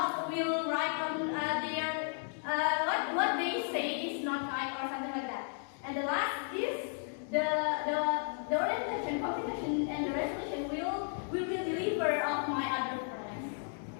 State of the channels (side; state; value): right; silent; 55 dB below the other